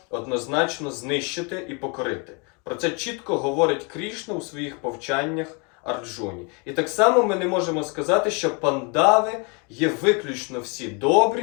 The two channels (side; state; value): right; quieter; 33.1 dB